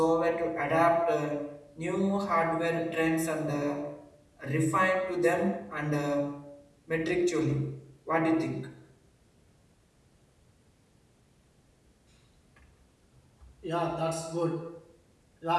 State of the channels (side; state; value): both; identical; correlation 1.00